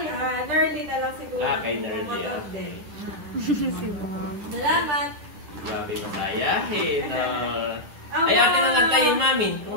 Nerly na lang siguro. Kay Nerly. Si Bob. Salamat. Grabe masayahin. Ay, akin na nagtayin namin. Kung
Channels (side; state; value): left; late; 10 ms